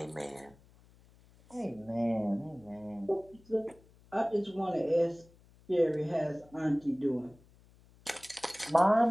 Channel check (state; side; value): noise; left; hum, 27 dB below the sound